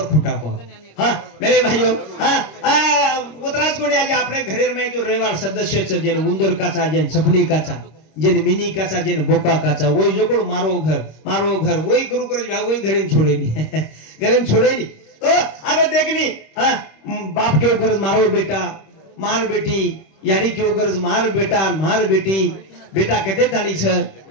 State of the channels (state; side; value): late; right; 26 ms